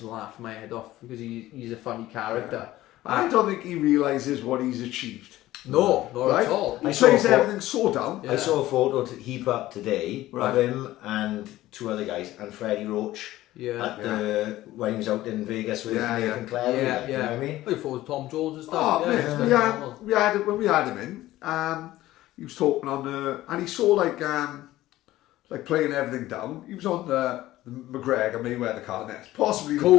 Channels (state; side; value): quieter; right; 15.7 dB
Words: laughing my head off, because he's a funny character. I don't think he realises what he's achieved. No, not at all. He plays everything so down. I saw a photo to heap up today of him and two other guys and Freddie Roach when he was out in Vegas with Nathan Clare. You know what I mean? I thought Tom Jones and stuff. When we had him in, he was talking on and he saw like playing everything down. He was on the McGregor Mayweather card, and it's possibly the